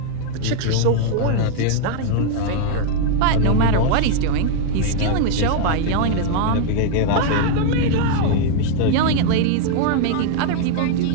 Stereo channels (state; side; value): different; both; correlation 0.00